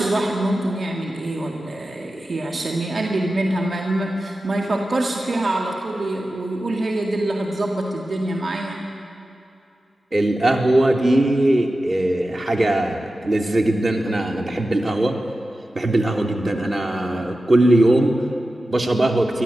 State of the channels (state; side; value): normal; both; correlation 0.93